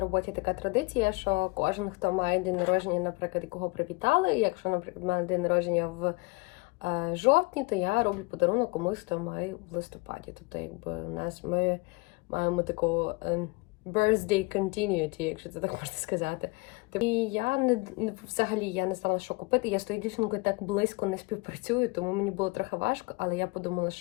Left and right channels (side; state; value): right; quieter; 25.7 dB